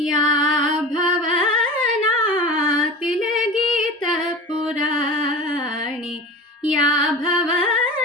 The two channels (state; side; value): normal; both; correlation 0.33